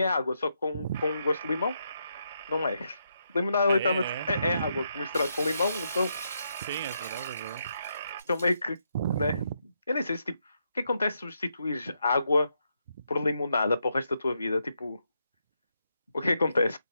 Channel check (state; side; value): inverted; both; correlation -0.80